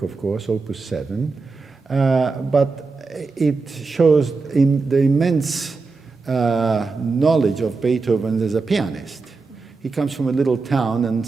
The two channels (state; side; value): quieter; left; 4.2 dB